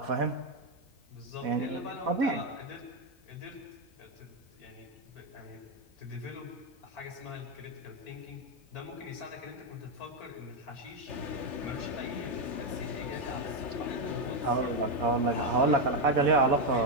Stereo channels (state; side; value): normal; both; correlation 0.05